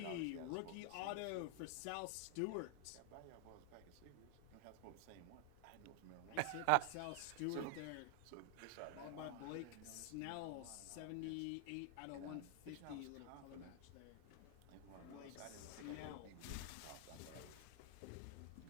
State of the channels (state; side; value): different; both; correlation 0.00